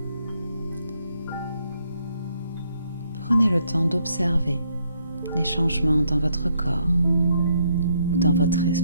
Prenez le temps d'observer les changements dans votre corps ou dans votre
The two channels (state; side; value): inverted; both; correlation -0.72